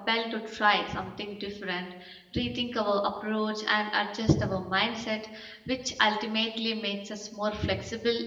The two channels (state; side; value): identical; both; correlation 1.00